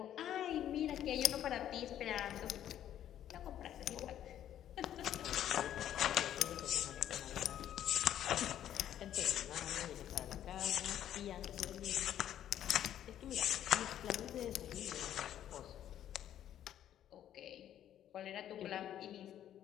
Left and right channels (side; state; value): right; quieter; 11.0 dB